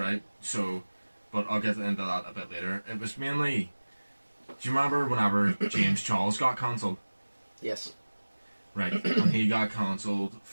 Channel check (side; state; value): both; inverted; correlation -1.00